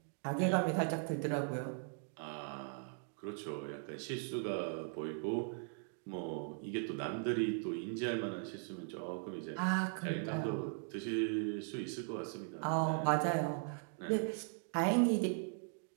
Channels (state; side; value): silent; left; 52 dB below the other